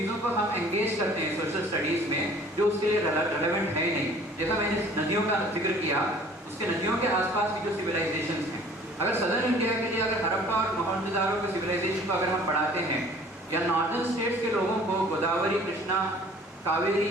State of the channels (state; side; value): normal; both; correlation 0.52